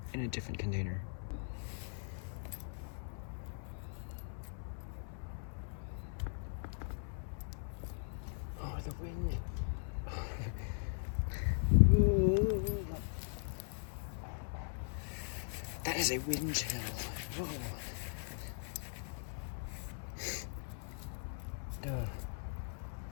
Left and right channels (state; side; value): silent; right; 51 dB below the other